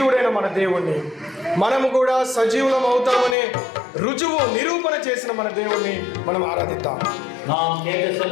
మన దేవుణ్ణి, మనము కూడా సజీవులం అవుతామనే రుజువు నిరూపణ చేసిన మన దేవుణ్ణి మనం ఆరాధిద్దాం. நாம் கேட்ட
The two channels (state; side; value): drops out; right; at 3.4 s